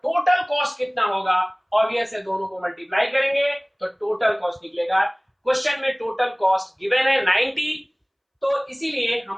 कॉस्ट कितना होगा? ऑब्वियस है, दोनों को मल्टीप्लाई करेंगे तो टोटल कॉस्ट निकलेगा। क्वेश्चन में टोटल कॉस्ट गिवन है 90, तो इसीलिए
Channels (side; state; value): both; identical; correlation 1.00